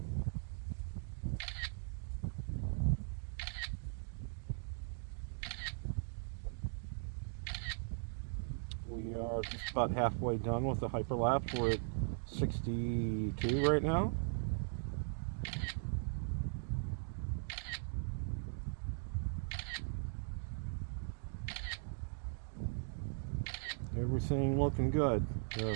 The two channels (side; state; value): left; silent; digital silence